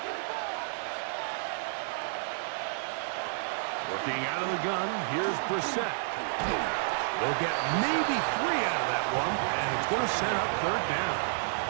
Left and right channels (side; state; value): left; silent; 57 dB below the other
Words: Working out of the gun, here's Brissett. They'll get maybe 3 out of that one, and it's going to set up third down.